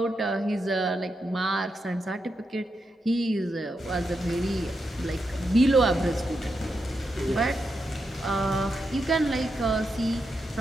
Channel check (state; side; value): normal; both; correlation 0.85